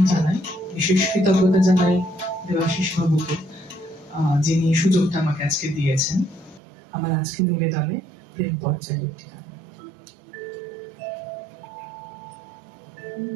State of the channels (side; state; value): left; drops out; at 6.6 s